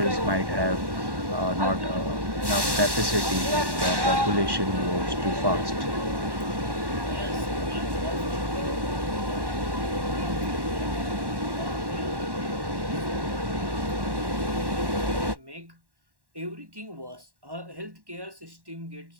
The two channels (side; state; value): left; late; 1.1 ms